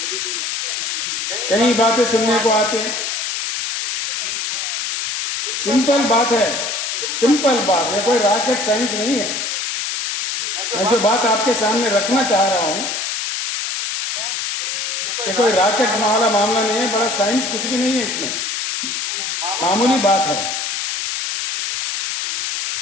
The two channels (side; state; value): left; noise; hiss, 2 dB below the sound